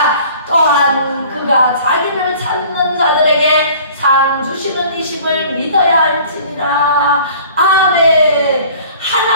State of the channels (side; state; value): both; inverted; correlation -0.49